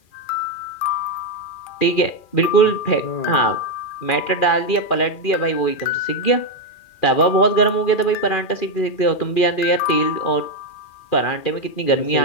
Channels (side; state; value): right; late; 2.4 ms